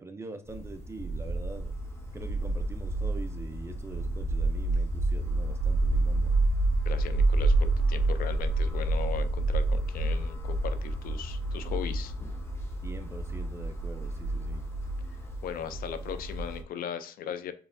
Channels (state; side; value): normal; both; correlation 0.80